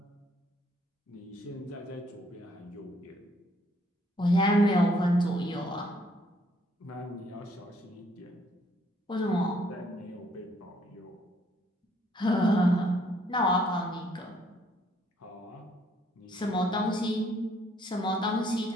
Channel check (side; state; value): both; normal; correlation 0.67